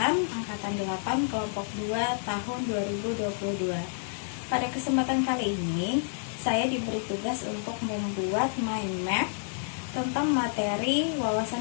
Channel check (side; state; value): right; silent; digital silence